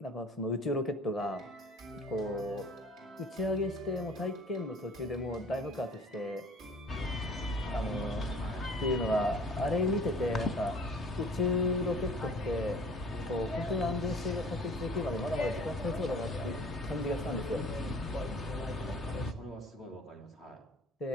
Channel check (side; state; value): both; normal; correlation 0.48